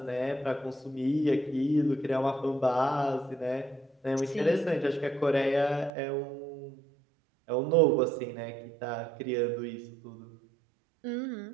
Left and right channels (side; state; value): left; drops out; at 5.9 s